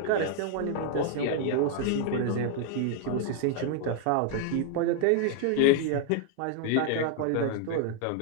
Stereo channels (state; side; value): different; both; correlation 0.00